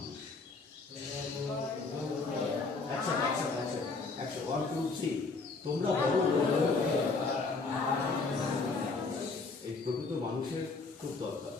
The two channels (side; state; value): right; quieter; 4.0 dB